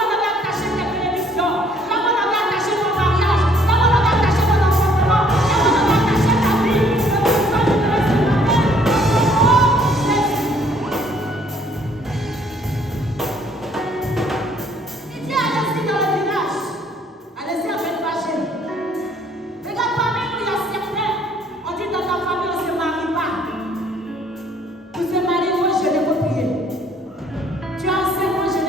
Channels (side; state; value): both; normal; correlation 0.62